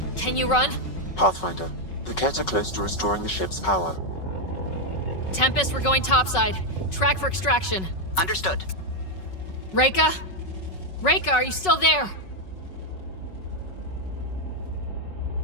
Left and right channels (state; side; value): late; right; 5.4 ms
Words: Can you run? Pathfinder, the Ket are close to restoring the ship's power. Tempest, we're going topside. Track for extraction. Understood. Reika? Reika, are you still there?